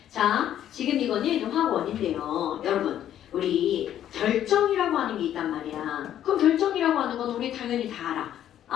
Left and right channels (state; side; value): quieter; right; 11.0 dB